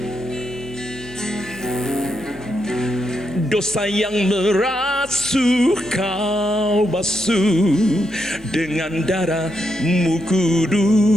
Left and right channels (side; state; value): both; normal; correlation 0.82